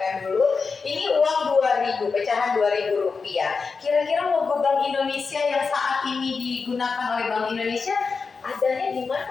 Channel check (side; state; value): right; quieter; 4.8 dB